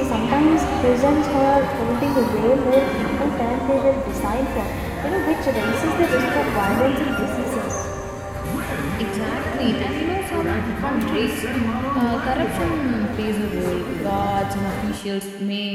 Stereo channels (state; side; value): identical; both; correlation 1.00